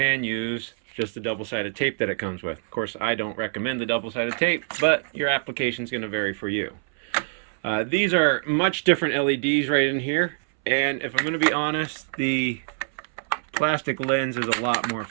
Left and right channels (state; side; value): silent; left; 62 dB below the other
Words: use just the double-sided tape that it comes with. Of course, I don't recommend the double-sided tape, but your application is going to vary for you. These are much different LEDs right in here, and if I'm going to be honest, the plastic lens is a lot more